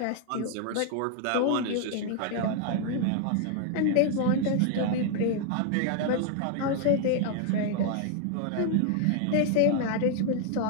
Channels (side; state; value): both; different; correlation 0.00